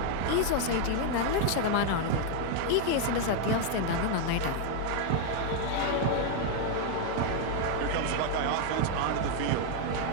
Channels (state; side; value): different; both; correlation 0.00